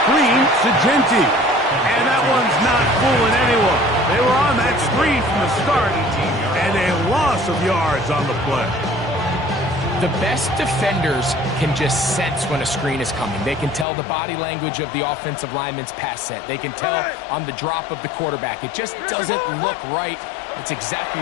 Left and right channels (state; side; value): drops out; right; at 13.9 s